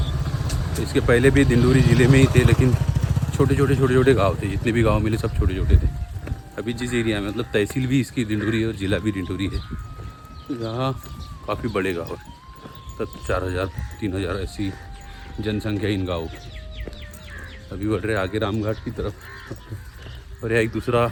तो इसके पहले भी डिंडोरी ज़िले में ही थे, लेकिन छोटे छोटे गांव थे। जितने भी गांव मिले सब छोटे छोटे थे। अभी जिस एरिया में, मतलब तहसील भी इसकी डिंडोरी है और ज़िला भी डिंडोरी है, तो यहाँ काफ़ी बड़े गाँव है। तब 4000 3000 ऐसी जनसंख्या इन गाँव की। अभी बढ़ रहे आगे रामघाट की तरफ। और यह एक दूसरा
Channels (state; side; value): identical; both; correlation 1.00